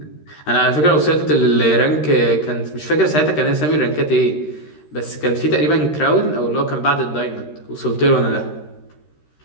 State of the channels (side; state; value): right; late; 13 ms